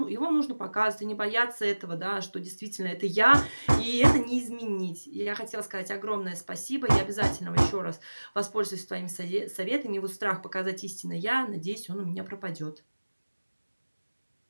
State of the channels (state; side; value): inverted; both; correlation -1.00